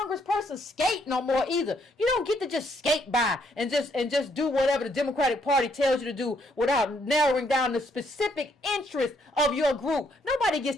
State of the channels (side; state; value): both; normal; correlation 0.71